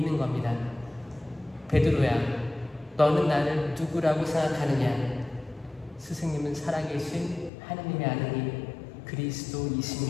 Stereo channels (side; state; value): right; drops out; at 7.5 s